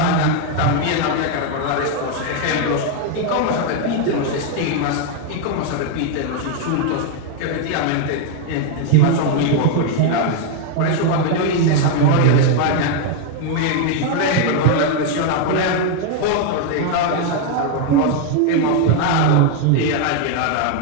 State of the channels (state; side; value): different; both; correlation 0.01